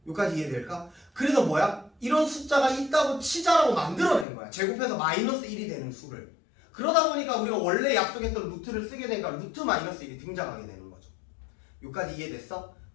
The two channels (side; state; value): right; drops out; at 4.2 s